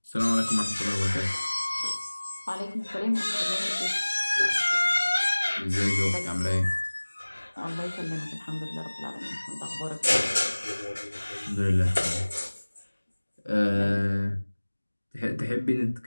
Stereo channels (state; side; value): inverted; both; correlation -1.00